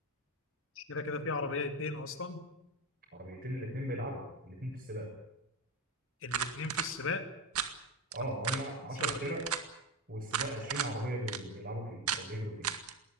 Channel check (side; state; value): both; normal; correlation 0.16